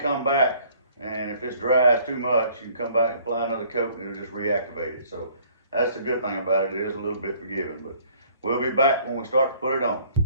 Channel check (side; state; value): both; inverted; correlation -0.58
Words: come back, and if it's dries too much, you can come back and apply another coat and it'll just reactivate it. So that's the good thing about it. It is a little bit forgiving, but we'll be back when we start to put it on.